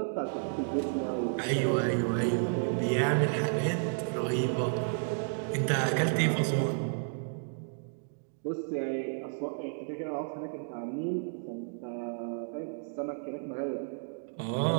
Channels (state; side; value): silent; left; digital silence